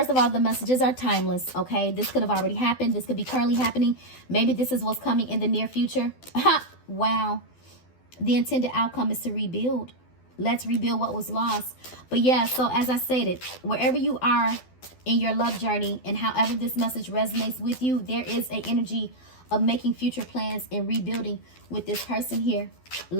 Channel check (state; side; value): late; right; 12 ms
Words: of all, the messages are timeless, okay? This could have already happened. This could be currently happening. Maybe this is what's coming in the near future. Wow. The intended outcome is to rebuild. Let's rebuild what was lost. But yeah, so as I stated, wherever you are in your love journey and however this message resonates with you, there is an energy of making future plans and rebuilding with this person here.